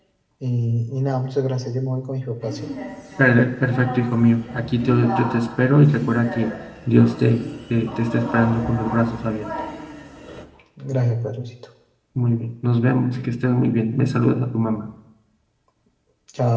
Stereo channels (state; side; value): identical; both; correlation 1.00